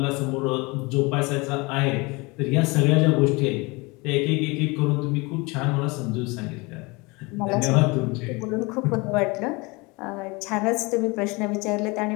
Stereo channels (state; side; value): quieter; right; 26.0 dB